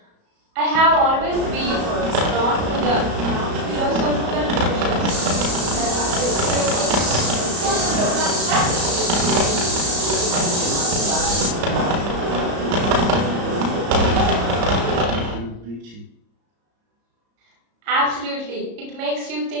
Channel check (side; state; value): left; late; 34 ms